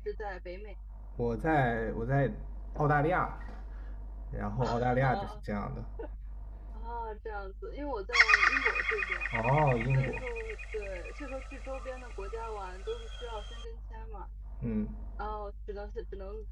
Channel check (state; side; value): identical; both; correlation 1.00